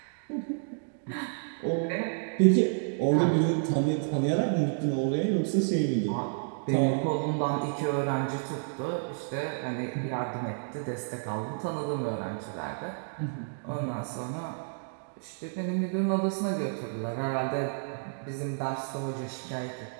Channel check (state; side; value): silent; left; digital silence